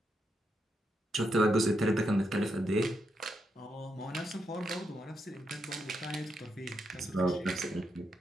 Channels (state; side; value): normal; both; correlation 0.82